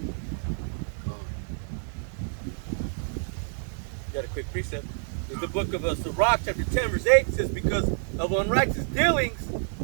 Got a quick precept. In the book of Sirach, chapter 10, verse 8, says, because of unrighteous dealings,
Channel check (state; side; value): silent; left; digital silence